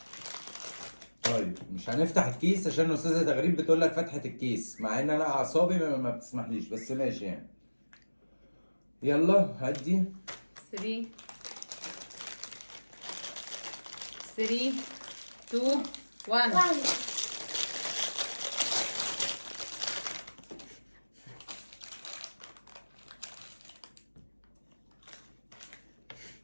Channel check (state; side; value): inverted; both; correlation -1.00